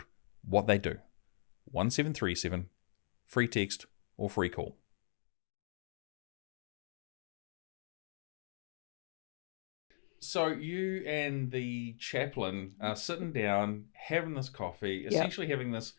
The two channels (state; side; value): silent; right; digital silence